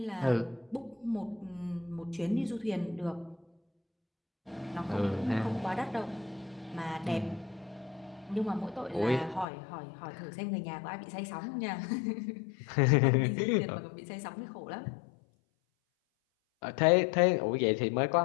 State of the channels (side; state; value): right; drops out; at 9.5 s